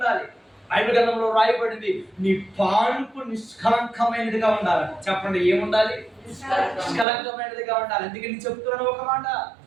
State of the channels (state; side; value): drops out; left; at 7.1 s